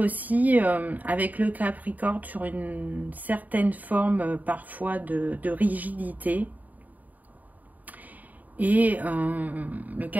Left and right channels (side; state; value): left; late; 0.078 ms